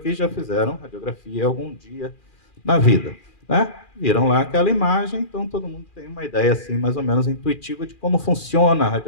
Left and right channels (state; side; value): late; right; 2.4 ms